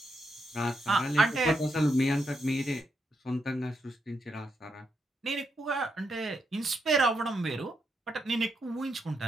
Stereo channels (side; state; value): both; normal; correlation 0.81